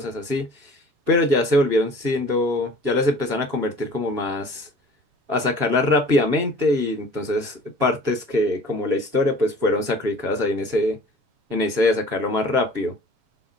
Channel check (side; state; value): left; late; 7.1 ms